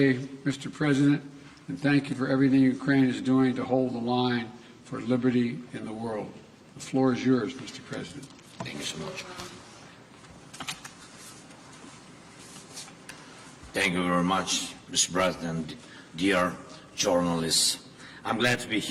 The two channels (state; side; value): identical; both; correlation 1.00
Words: Mr. President, and thank you for everything Ukraine is doing to hold the line for liberty in the world. The floor is yours, Mr. President. Thank you so much. Thank you very much, Mr. President, dear journalists. I'm glad to be